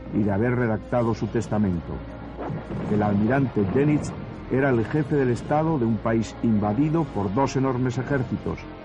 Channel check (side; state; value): both; identical; correlation 1.00